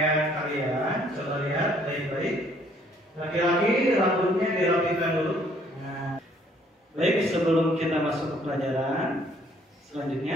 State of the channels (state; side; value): normal; both; correlation 0.63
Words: kalian. Coba lihat baik-baik. Laki-laki rambutnya dirapikan dulu. Nah, baik, sebelum kita masuk ke pelajaran